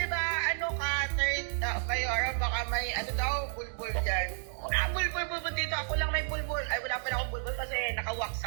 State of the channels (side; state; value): left; silent; digital silence